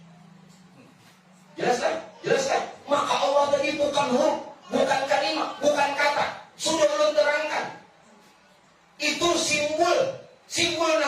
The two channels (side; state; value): both; identical; correlation 1.00